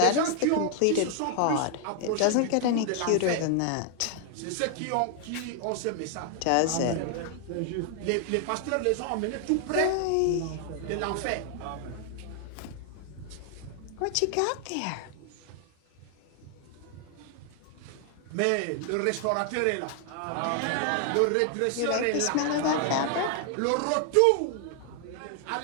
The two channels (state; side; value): different; both; correlation 0.00